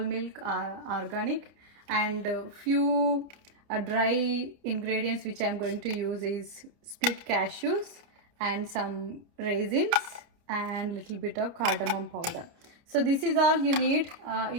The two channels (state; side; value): late; left; 29 ms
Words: organic and few dry ingredients which I am going to use is split cashews and some raisins and little bit of cardamom powder. So this is all you need.